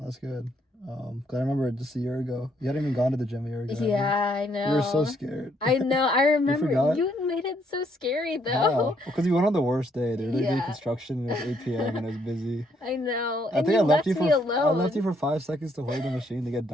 good. 'Cause I remember just a year ago, you hadn't even gone to the gym a year ago. Yeah, I know. You were so scared. I know. I remember. You You made it so scary though. Because you went on the worst day. They were doing construction and it was 8 p.m. and it was busy. I know. I And think you I left you me alone. I left you for 5 seconds to hold the machine to get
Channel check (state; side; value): normal; both; correlation 0.71